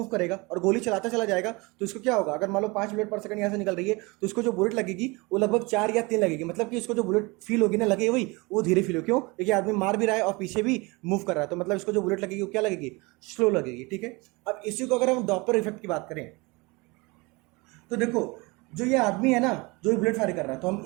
करेगा और गोली चलाता चला जाएगा तो इसको क्या होगा, अगर मान लो 5 बुलेट पर सेकंड यहाँ से निकल रही है तो इसको जो बुलेट लगेगी वो लगभग 4 या 3 लगेगी। मतलब कि इसको जो बुलेट फील होगी ना, लगे वही वो धीरे फील हो, क्यों, क्योंकि आदमी मार भी रहा है और पीछे भी मूव कर रहा है, तो मतलब इसको जो बुलेट लगेगी वो क्या लगेगी, स्लो लगेगी, ठीक है। अब इसी को अगर हम डॉपलर इफेक्ट की बात करें तो देखो जो ये आदमी है ना जो बुलेट फायर कर रहा है, तो हम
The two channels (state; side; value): quieter; left; 25.8 dB